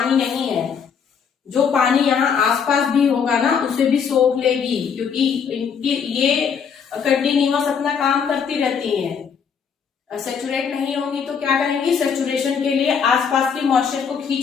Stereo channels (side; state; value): right; quieter; 6.7 dB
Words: नहीं है। जो पानी यहाँ आसपास भी होगा ना उसे भी सोख लेगी, क्योंकि इनकी ये कंटिन्यूअस अपना काम करती रहती हैं। सेचुरेट नहीं होंगी तो क्या करेंगी, सेचुरेशन के लिए आसपास की मॉइस्चर को